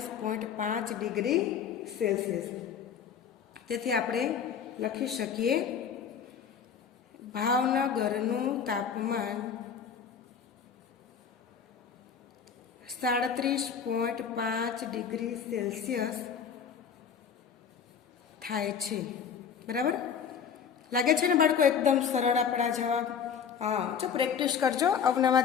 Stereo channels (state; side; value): quieter; right; 7.2 dB